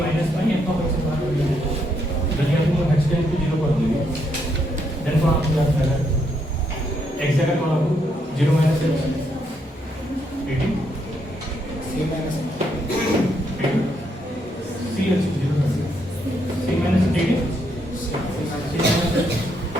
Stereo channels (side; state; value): both; normal; correlation 0.76